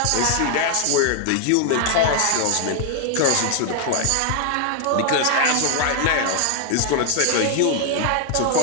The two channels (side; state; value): both; different; correlation 0.00